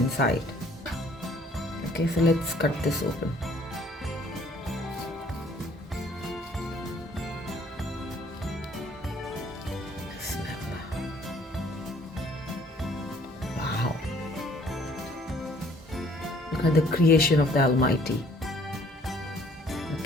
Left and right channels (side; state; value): both; normal; correlation 0.58